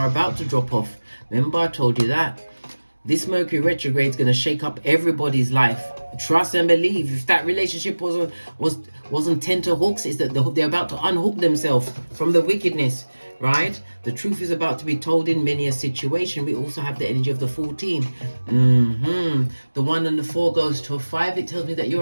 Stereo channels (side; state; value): both; inverted; correlation -1.00